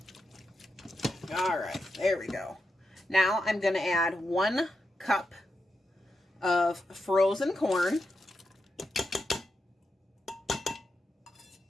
All right, there we go. Now I'm going to add 1 cup of frozen corn.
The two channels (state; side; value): normal; both; correlation 0.87